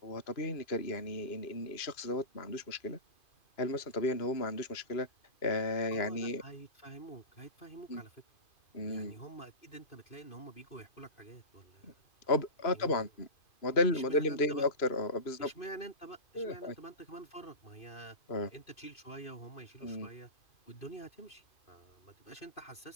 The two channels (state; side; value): late; right; 2.5 ms